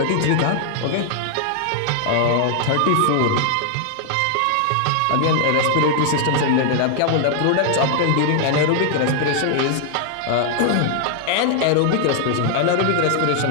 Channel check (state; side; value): different; both; correlation 0.00